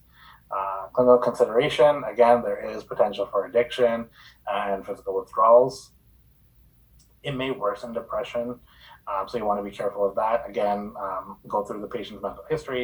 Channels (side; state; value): both; identical; correlation 1.00